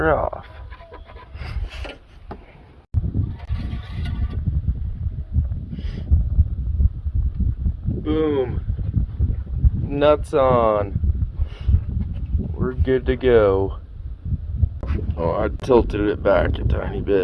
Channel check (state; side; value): identical; both; correlation 1.00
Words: off. Boom. Nuts on. We're good to go. Oh, I tilted it back a tiny